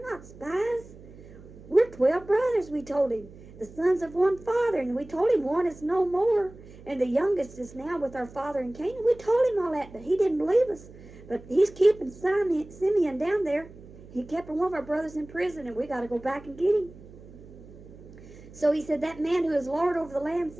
not spies. We're 12 brothers, we told him, the sons of one father. And we told him one is no more, and the youngest is now with our father in Canaan. We told him all that, but he didn't believe us. But he's keeping Simeon down there. He kept one of our brothers in prison, and we got to go back and get him. So he said, that man who is Lord over the land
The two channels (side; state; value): right; noise; hum, 19 dB below the sound